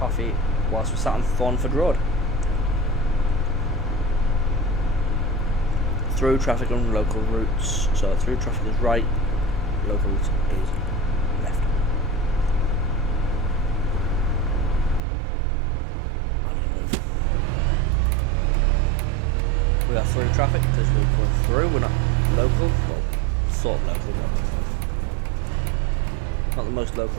whilst we're sat on Thornford Road. Through traffic on local routes. So through traffic is right, local routes is left. I don't know through traffic because we're going through. We're not local, well, sort of local, but not the most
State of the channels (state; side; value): drops out; left; at 15.0 s